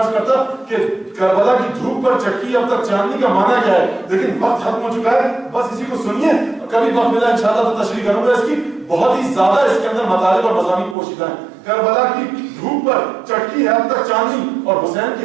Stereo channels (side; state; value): left; drops out; at 11.0 s